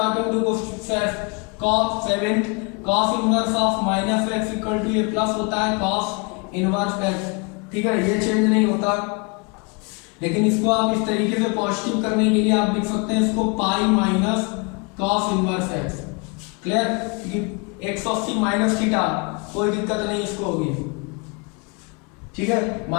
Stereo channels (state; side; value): quieter; right; 31.4 dB